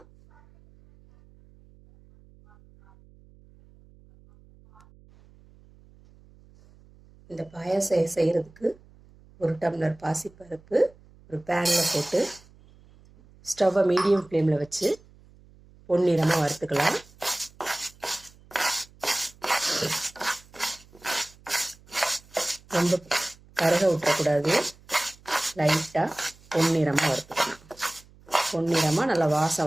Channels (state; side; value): noise; right; hum, 26 dB below the sound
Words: இந்த பாயாசம் செய்கிறதுக்கு 1 டம்ளர் பாசிப்பருப்பு ஒரு பேனில் போட்டு ஸ்டவ்வை மீடியம் ஃப்ளேமில் வச்சு பொன்னிறமாக வறுத்துக்கலாம். ரொம்ப கருக விட்டக்கூடாது, லைட்டாக பொன்னிறமாக வறுத்துக்கலாம். பொன்னிறமாக நல்லா